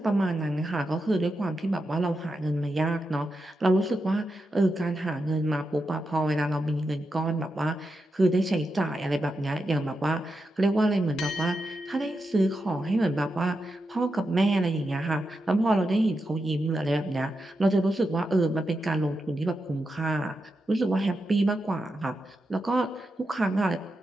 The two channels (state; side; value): normal; both; correlation 0.87